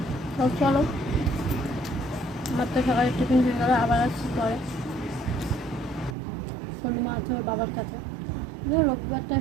তো চলো, আমার তো সকালে টিফিন হয়ে গেলো, আবার আসছি পরে। সোনুমা আছে ওর বাবার কাছে। রবিবারটা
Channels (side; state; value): left; drops out; at 6.2 s